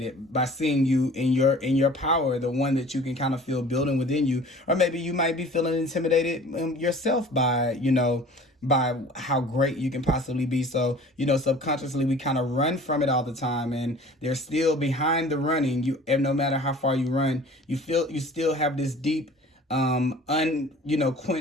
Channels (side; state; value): both; normal; correlation 0.46